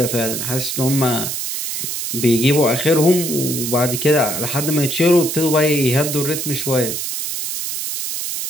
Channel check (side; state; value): right; noise; hiss, 4 dB below the sound